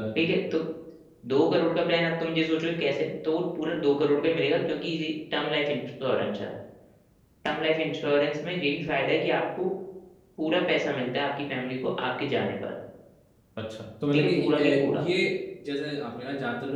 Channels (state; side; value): identical; both; correlation 1.00